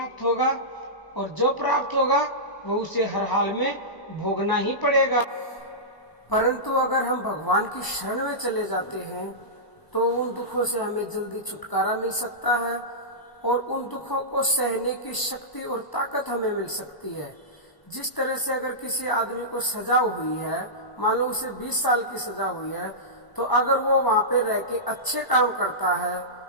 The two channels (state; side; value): late; right; 1.0 ms